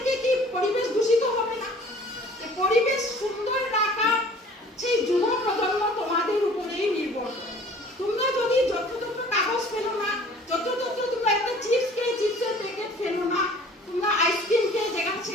কি পরিবেশ দূষিত হবে না? পরিবেশ সুন্দর রাখা সেই যুব প্রজন্ম তোমাদের উপরেই নির্ভর করে। তোমরা যদি যত্রতত্র কাগজ ফেলো না, যত্রতত্র তোমরা একটা চিপস খেয়ে চিপসের প্যাকেট ফেলো না, তোমরা আইসক্রিম খেয়ে যেখানে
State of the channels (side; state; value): both; normal; correlation 0.50